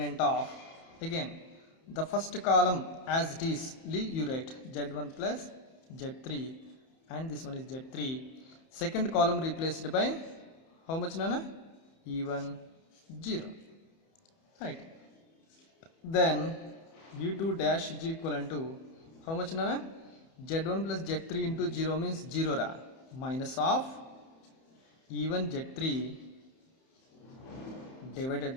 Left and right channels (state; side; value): late; right; 31 ms